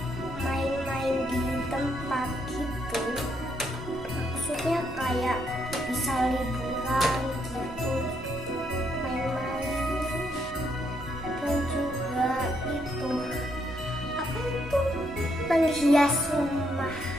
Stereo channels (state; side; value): noise; left; hum, 26 dB below the sound